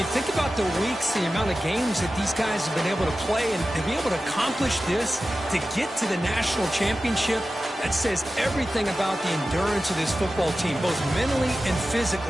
think about the weeks, the amount of games that these guys have been able to play, and to be able to accomplish this, to get to the national championship, that says everything about the endurance of this football team, both mentally and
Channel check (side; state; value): both; normal; correlation 0.94